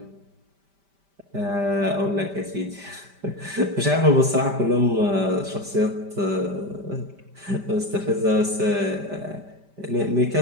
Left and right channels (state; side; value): late; left; 5.1 ms